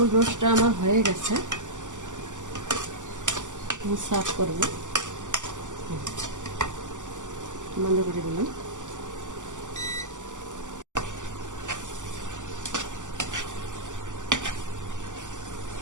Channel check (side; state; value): left; late; 0.86 ms